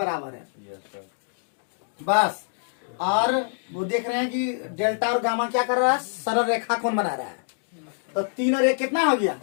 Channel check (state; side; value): silent; right; digital silence